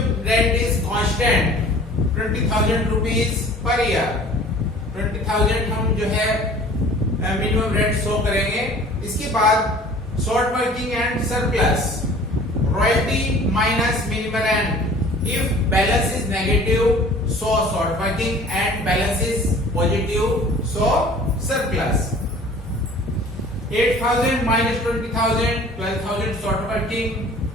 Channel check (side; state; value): both; normal; correlation 0.47